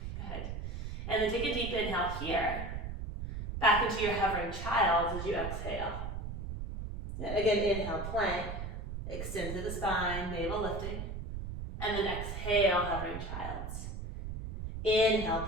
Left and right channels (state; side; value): noise; right; rumble, 5 dB below the sound